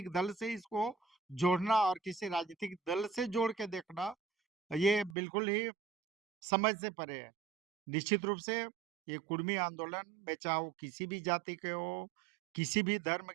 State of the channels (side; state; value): left; drops out; at 5.2 s